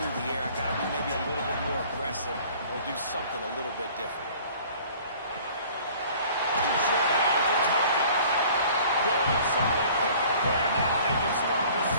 the air. I got to be maybe a little bit more aggressive or do something a little bit different. Sure hands, it's Hawkins. Good, solid pick up there. Now they can start to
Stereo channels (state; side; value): inverted; both; correlation -0.50